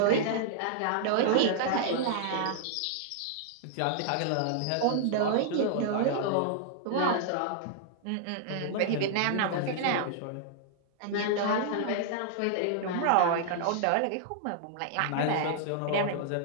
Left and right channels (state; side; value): different; both; correlation -0.01